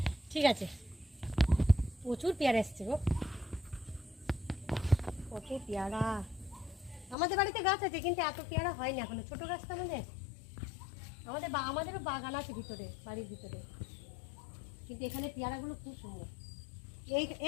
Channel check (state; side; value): drops out; right; at 7.2 s